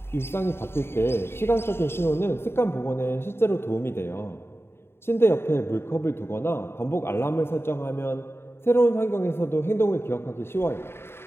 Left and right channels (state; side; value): late; right; 0.11 ms